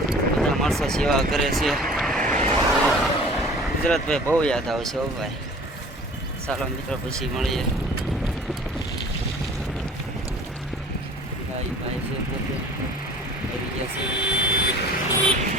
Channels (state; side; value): normal; both; correlation 0.47